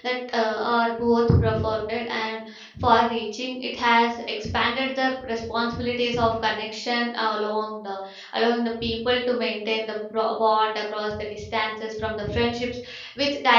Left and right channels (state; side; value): identical; both; correlation 1.00